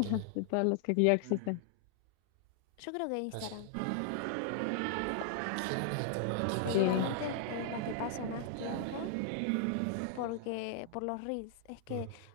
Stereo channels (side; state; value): both; different; correlation 0.00